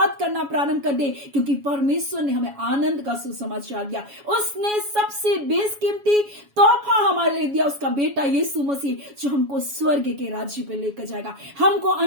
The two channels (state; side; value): late; left; 7.2 ms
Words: करना प्रारंभ कर दे, क्योंकि परमेश्वर ने हमें आनंद का सुसमाचार दिया। उसने सबसे बेशकीमती तोहफा हमारे लिए दिया, उसका बेटा यीशु मसीह, जो हमको स्वर्ग के राज्य पे लेकर जाएगा, हमको